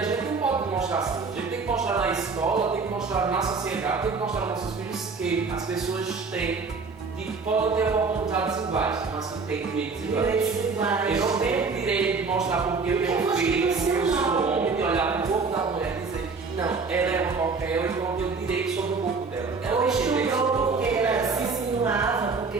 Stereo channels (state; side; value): quieter; left; 4.6 dB